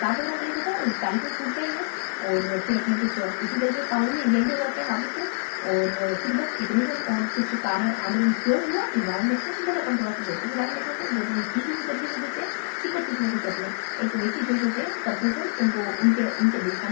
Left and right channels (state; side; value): silent; right; digital silence